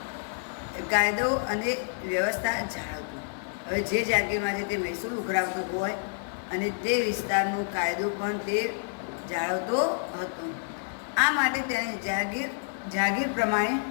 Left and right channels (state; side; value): silent; right; digital silence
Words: અને વ્યવસ્થા જાળવતો. હવે જે જાગીરમાંથી તે મહેસૂલ ઉઘરાવતો હોય અને તે વિસ્તારનો કાયદો પણ તે જાળવતો હતો. આ માટે તેને જાગીર પ્રમાણે